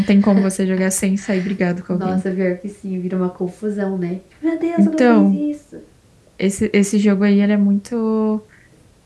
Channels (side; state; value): both; identical; correlation 1.00